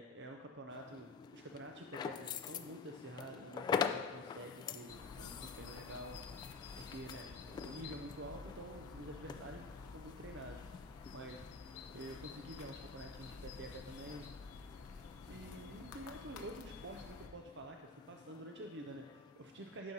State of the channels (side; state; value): right; quieter; 3.9 dB